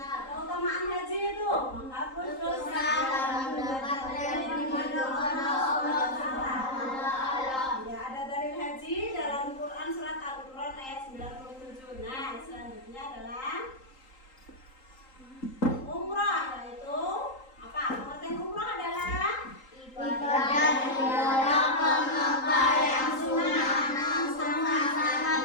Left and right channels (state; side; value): late; right; 3.8 ms